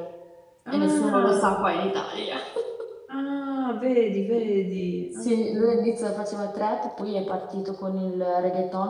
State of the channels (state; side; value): identical; both; correlation 1.00